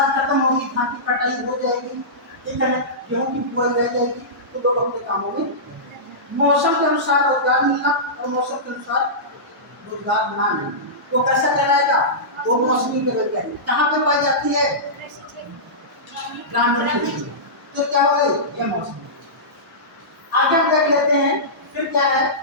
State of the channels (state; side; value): normal; both; correlation -0.17